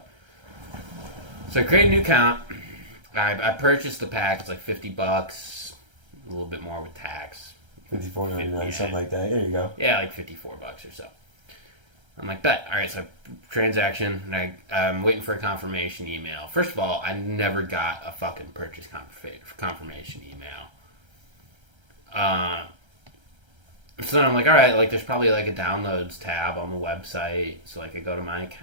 So I created a new account. I purchased the pack. It's like $50, a little bit more with tax. $54.99, something like that. There you go. Yeah, like $54 or so. I'm like, bet. All right, so transaction, and I'm waiting for a confirmation email. First of all, I never got a fucking purchase confirmation email. So then I'm like, all right, like there's probably like a downloads tab on the website. So like I go to my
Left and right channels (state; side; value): late; left; 1.3 ms